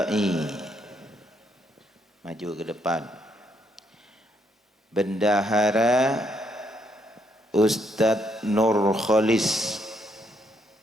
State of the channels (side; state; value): both; normal; correlation 0.74